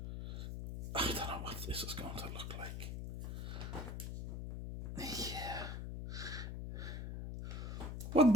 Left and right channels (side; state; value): left; noise; hum, 5 dB below the sound